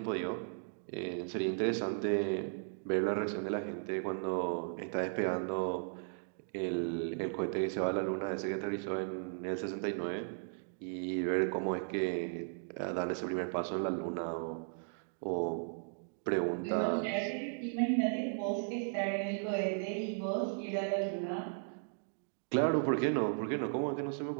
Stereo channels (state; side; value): silent; left; digital silence